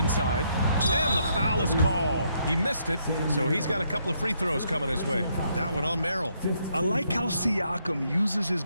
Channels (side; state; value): both; inverted; correlation -0.74